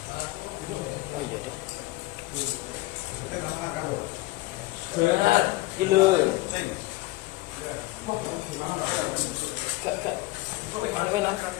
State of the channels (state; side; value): quieter; right; 19.3 dB